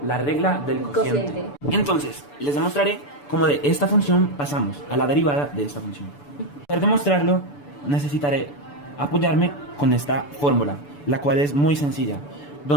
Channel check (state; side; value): late; right; 6.9 ms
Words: la regla del cociente. Entonces, les demostraré cómo de esta función pasamos a la derivada de esta función. Para demostrarlo, necesitaré apoyarme con esta fórmula, la cual es muy sencilla,